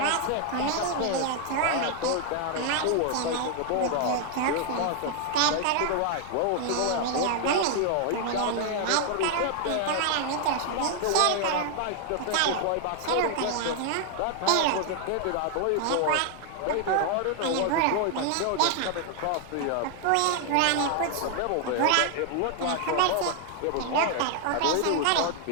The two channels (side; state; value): both; different; correlation 0.00